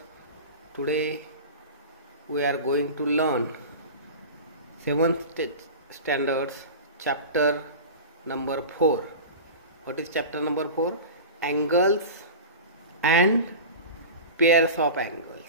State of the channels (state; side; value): inverted; both; correlation -0.31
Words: Today we are going to learn 7th standards chapter number 4. What is chapter number 4? Angles and pairs of